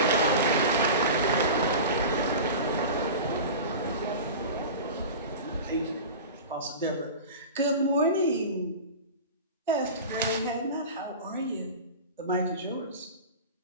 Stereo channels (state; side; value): inverted; both; correlation -0.32